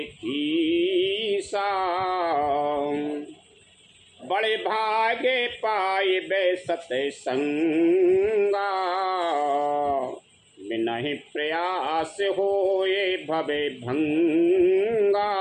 कीसा। बड़े भागे पाए बे सत्संगा, बिना ही प्रयास होए भवे भंगा।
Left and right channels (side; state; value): both; identical; correlation 1.00